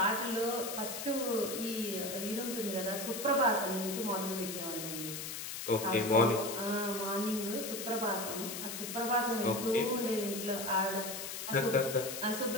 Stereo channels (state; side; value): noise; left; hiss, 6 dB below the sound